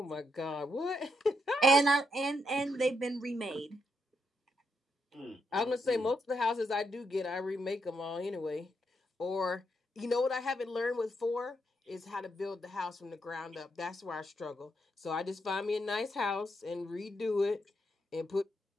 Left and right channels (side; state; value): both; normal; correlation 0.79